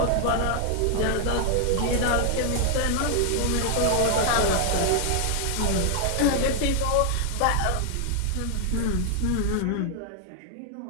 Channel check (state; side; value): different; both; correlation 0.00